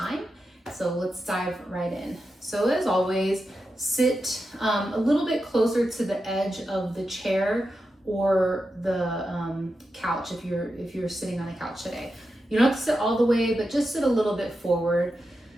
So let's dive right in. So as always, sit a little bit closer to the edge of the chair or the couch if you're sitting on a couch today. You don't have to sit all the way, but just sit a little bit forward.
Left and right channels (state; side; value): normal; both; correlation 0.89